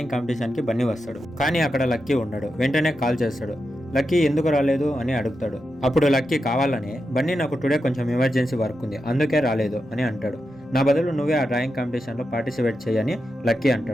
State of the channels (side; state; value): both; normal; correlation 0.88